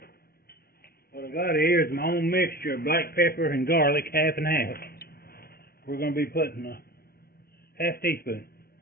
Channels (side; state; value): right; late; 0.45 ms